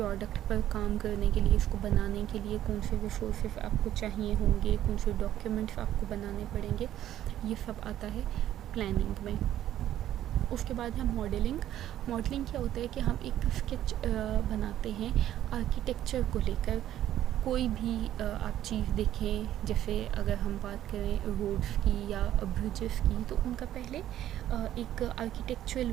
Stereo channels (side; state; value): left; quieter; 12.2 dB